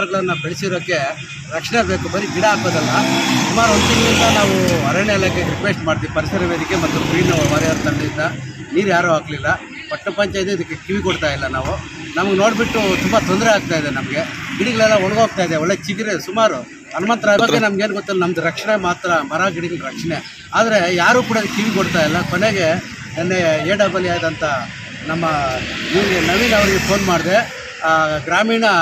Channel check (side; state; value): both; identical; correlation 1.00